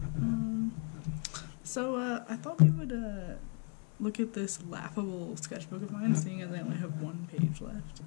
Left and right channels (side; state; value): right; quieter; 39.4 dB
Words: on? I thought we would, look at this laughable sketchbook of mine, seeing as I only have one page left.